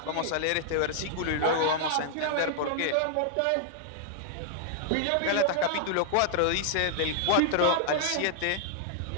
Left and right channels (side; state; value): both; different; correlation 0.00